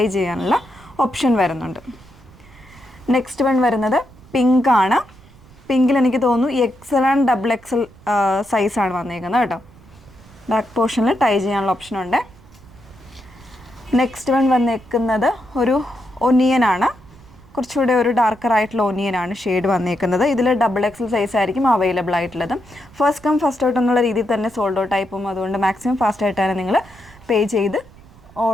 ചെയ്യാനുള്ള ഓപ്ഷൻ വരുന്നുണ്ട്. നെക്സ്റ്റ് വൺ വരുന്നത് പിങ്ക് ആണ്. പിങ്കിൽ എനിക്ക് തോന്നുന്നു XL ആൻഡ് XXL സൈസാണ് വന്നേക്കുന്നത് കേട്ടോ. ബാക്ക് പോർഷനിൽ ടൈ ചെയ്യാനുള്ള ഓപ്ഷനുണ്ട്. നെക്സ്റ്റ് വൺ വന്നേക്കുന്നത് ഒരു ഒനിയനാണ്. കുറച്ചുകൂടെ ഒരു ഡാർക്കർ ആയിട്ടുള്ള ഒനിയനാണ് ഷെയ്ഡ് വന്നേക്കുന്നത്. ഇതിൽ XXL സൈസ് ആയിരിക്കും അവൈലബിൾ ആയിട്ടുള്ളത്. ഫസ്റ്റ് കം ഫസ്റ്റ് ഔട്ട് എന്നുള്ള രീതിയിൽ തന്നെ സോൾഡ് ഔട്ട് ആയി പോകും. അതുകൊണ്ട് മാക്സിമം ഫാസ്റ്റ് ആയിട്ടാണ് നിങ്ങൾ പേ ചെയ്ത്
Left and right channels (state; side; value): noise; right; rumble, 24 dB below the sound